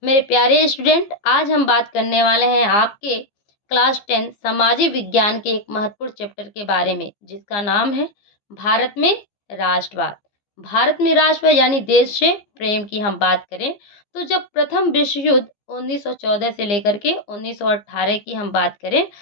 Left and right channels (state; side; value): late; right; 14 ms